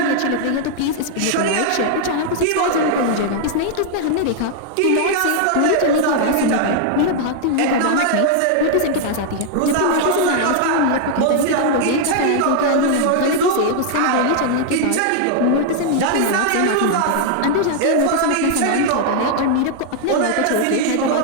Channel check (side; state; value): both; different; correlation 0.00